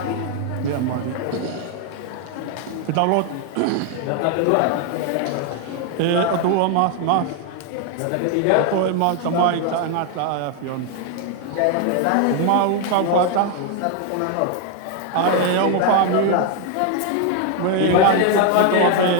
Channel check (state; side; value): different; both; correlation 0.01